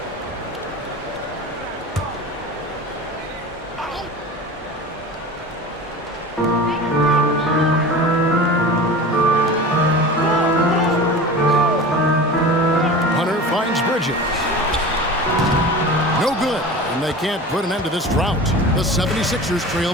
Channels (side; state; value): both; normal; correlation 0.34